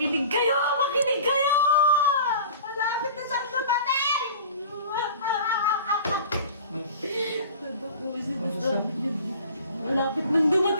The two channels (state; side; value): inverted; both; correlation -0.42